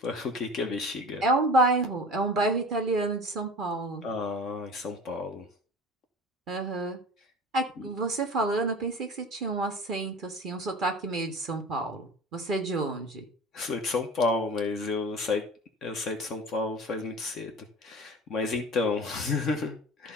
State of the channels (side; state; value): both; normal; correlation 0.38